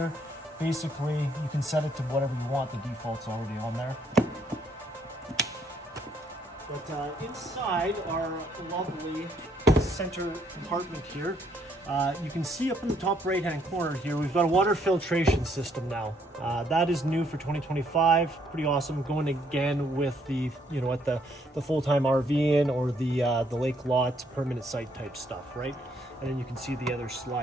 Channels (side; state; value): both; normal; correlation 0.69